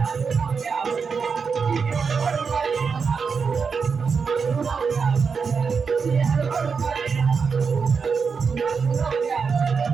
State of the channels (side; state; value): left; quieter; 5.6 dB